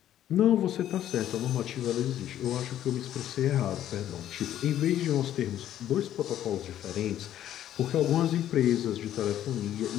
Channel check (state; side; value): quieter; right; 11.7 dB